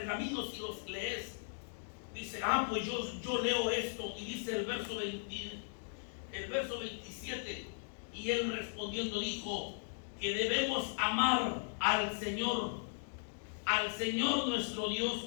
y los lees? Dice: pues yo leo esto. Y dice el verso 27: y él respondiendo dijo que debemos amar al Señor nuestro Dios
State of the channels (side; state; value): right; silent; digital silence